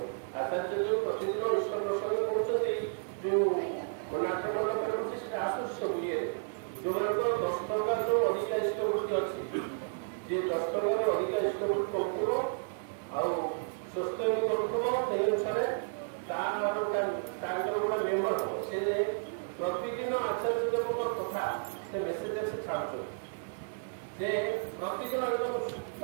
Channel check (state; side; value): silent; left; digital silence